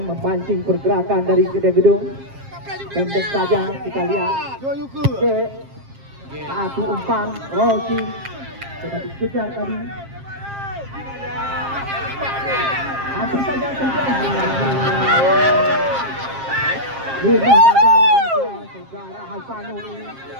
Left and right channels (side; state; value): left; late; 7.5 ms